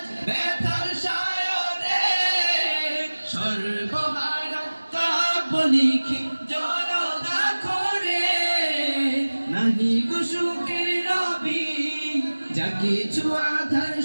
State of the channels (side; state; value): both; inverted; correlation -1.00